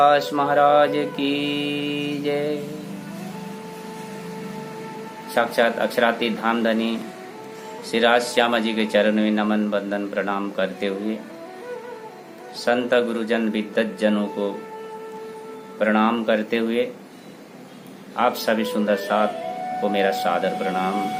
महाराज की जय। साक्षात अक्षरातीत धामधनी श्री राज श्यामा जी के चरण में नमन वंदन प्रणाम करते हुए संत गुरुजन विद्वत जनों को प्रणाम करते हुए आप सभी सुंदर साथ को मेरा सादर प्रणाम।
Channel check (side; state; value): both; identical; correlation 1.00